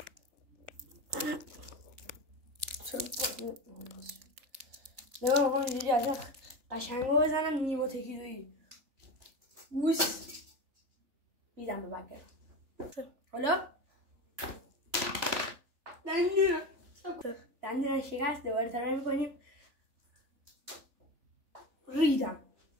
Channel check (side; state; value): left; late; 3.4 ms